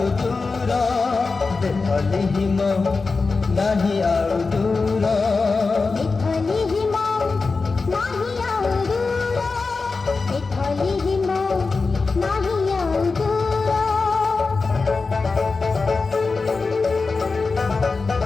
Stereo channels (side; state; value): right; quieter; 4.2 dB